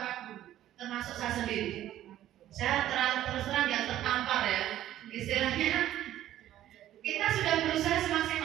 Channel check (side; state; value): left; quieter; 12.8 dB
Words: guru, termasuk saya sendiri. Saya terus terang yang tertampar ya, istilahnya kita sudah berusaha